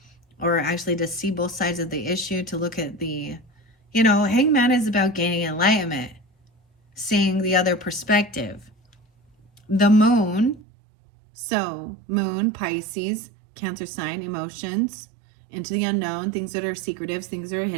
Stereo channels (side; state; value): left; drops out; at 10.6 s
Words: or actually to see both sides of the issue, to look at the, Hanged Man is about gaining enlightenment, seeing the other perspective. The Moon. So, Moon, Pisces, Cancer sign, emotions, into the unknown, things that are secretive, things that are